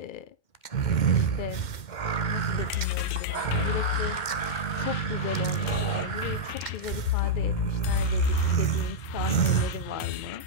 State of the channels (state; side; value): late; right; 2.1 ms